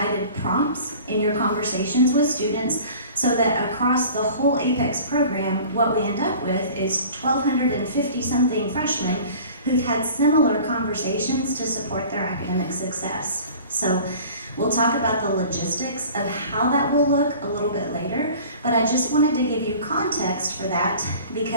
prompts in your conversations with students, so that across the whole APEX program, what we end up with is 1,250-something freshmen who've had similar conversations to support their academic success. So we'll talk about the logistics of how that will look a little bit later, but I just wanted to give you context for that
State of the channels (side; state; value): both; inverted; correlation -0.44